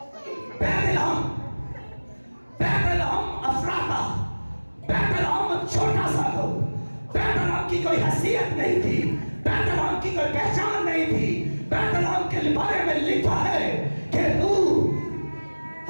बैतलहम अफराता, बैतलहम छोटा सा था, बैतलहम की कोई हैसियत नहीं थी, बैतलहम की कोई पहचान नहीं थी। बैतलहम के बारे में लिखा है कि तू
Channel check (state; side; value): inverted; both; correlation -1.00